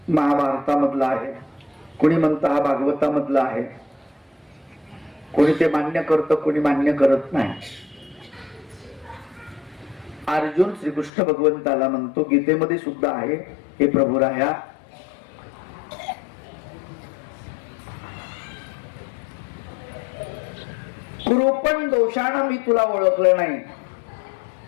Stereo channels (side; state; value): right; drops out; at 11.1 s